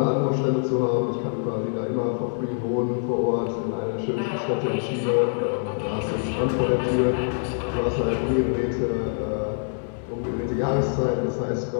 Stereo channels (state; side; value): silent; right; digital silence